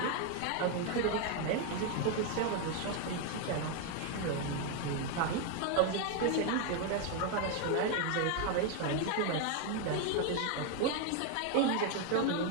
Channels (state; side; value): different; both; correlation 0.01